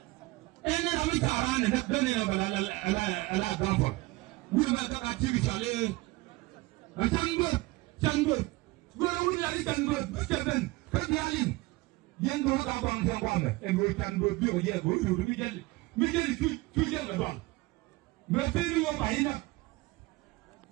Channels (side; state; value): left; quieter; 21.3 dB